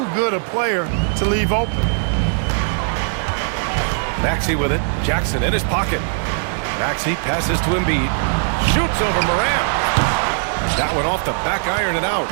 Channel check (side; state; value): left; silent; 58 dB below the other